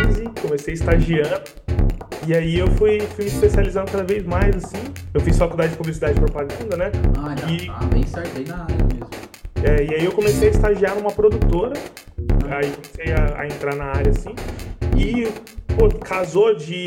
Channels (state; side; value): identical; both; correlation 1.00